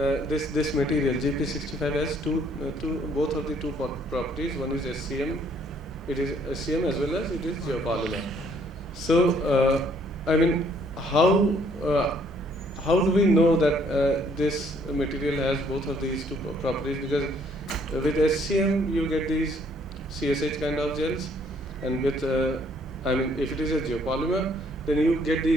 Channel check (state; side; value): normal; both; correlation 0.64